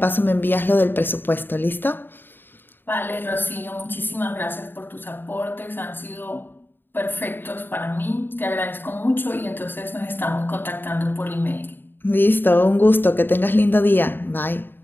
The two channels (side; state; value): right; late; 0.096 ms